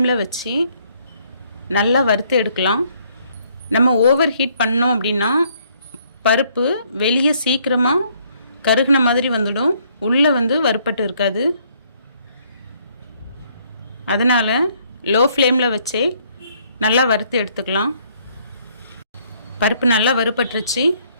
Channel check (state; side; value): inverted; both; correlation -0.67